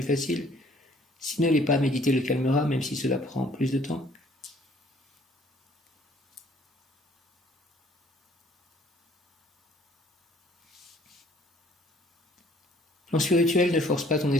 facile. S'il ne l'est pas, méditer le calmera, même si cela prend plus de temps. Plan spirituel, ne force pas ton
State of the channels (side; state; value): both; normal; correlation 0.59